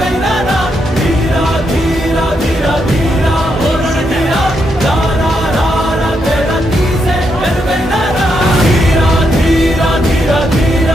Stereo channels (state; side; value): normal; both; correlation 0.80